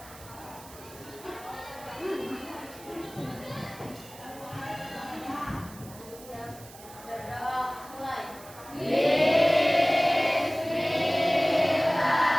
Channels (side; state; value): right; noise; hiss, 19 dB below the sound